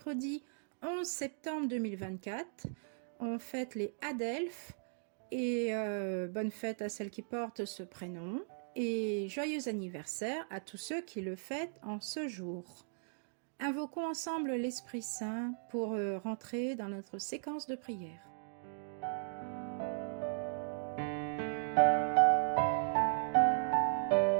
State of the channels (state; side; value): silent; left; digital silence